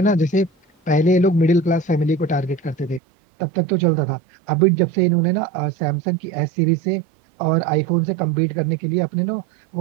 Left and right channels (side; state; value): left; drops out; at 3.0 s